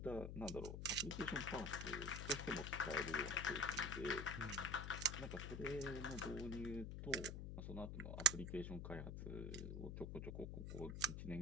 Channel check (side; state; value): left; noise; hum, 5 dB below the sound